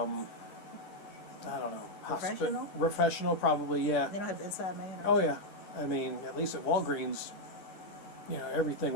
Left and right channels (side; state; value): right; late; 10 ms